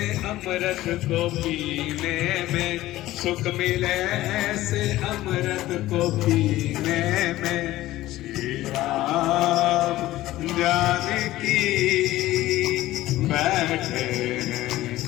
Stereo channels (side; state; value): right; quieter; 16.0 dB